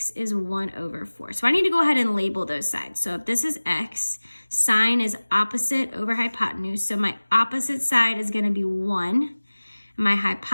is 1 over 4. So I need to go ahead and label those sides. So if this is x, sine is opposite over hypotenuse. So my opposite side is going to be 1. My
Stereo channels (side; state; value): both; inverted; correlation -1.00